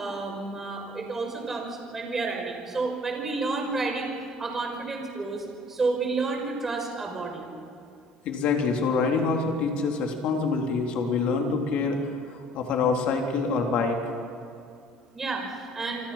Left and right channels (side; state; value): both; normal; correlation 0.52